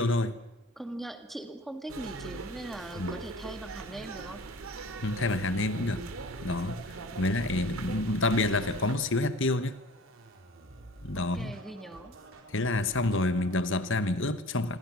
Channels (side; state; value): both; normal; correlation 0.44